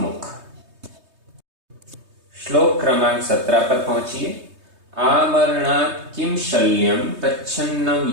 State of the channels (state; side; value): late; left; 3.2 ms